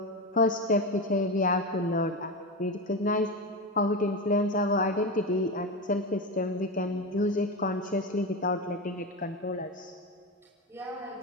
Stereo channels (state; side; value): normal; both; correlation 0.18